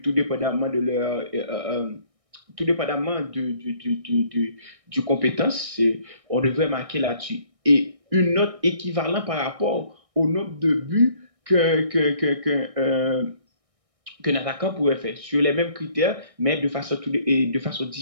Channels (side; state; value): left; late; 1.6 ms